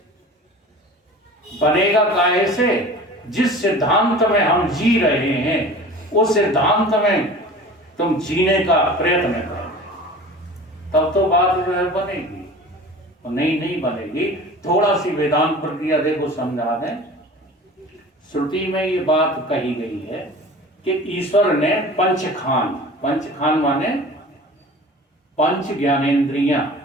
बनेगा काहे से? जिस सिद्धांत में हम जी रहे हैं उस सिद्धांत में तुम जीने का प्रयत्न करो, तब तो बात जो है बनेगी। और नहीं बनेगी। थोड़ा सी वेदांत प्रक्रिया देखो, समझा दें। श्रुति में ये बात कही गई है कि ईश्वर ने पंचखान माने 5 ज्ञानेंद्रियां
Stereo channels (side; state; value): both; normal; correlation 0.40